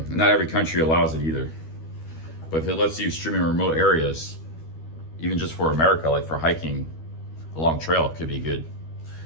not every country allows it either. But if it lets you stream in remote areas, even just for America, like for hiking a long trail, it could be good.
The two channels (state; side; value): late; right; 12 ms